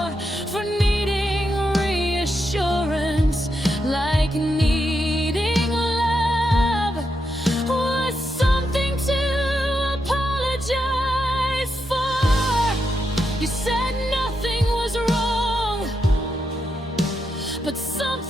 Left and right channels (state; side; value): normal; both; correlation 0.83